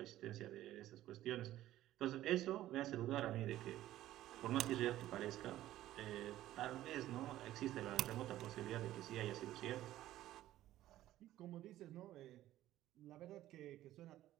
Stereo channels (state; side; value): quieter; left; 14.1 dB